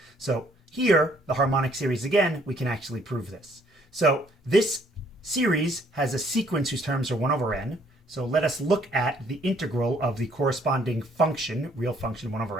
So here, the harmonic series again, we can actually prove this. So this series has a sequence whose terms are 1 over n. So let us look at the integral of the corresponding function, real function 1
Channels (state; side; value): normal; both; correlation 0.64